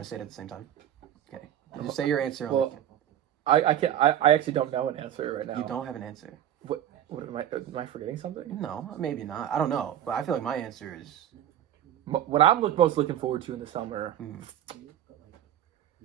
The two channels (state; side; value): quieter; left; 11.0 dB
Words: to say it at the same time? Okay. Just say your answer. Well, I can't. I actually don't know an answer right now. You don't have an answer. What am I forgetting something? No, maybe not. I don't know, but I feel like my answer is. What I'm most looking forward to in the summer.